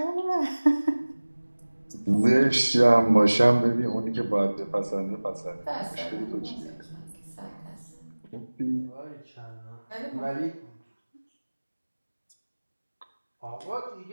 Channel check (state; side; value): inverted; both; correlation -1.00